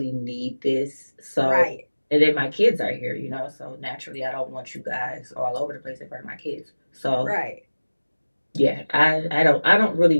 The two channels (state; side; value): inverted; both; correlation -1.00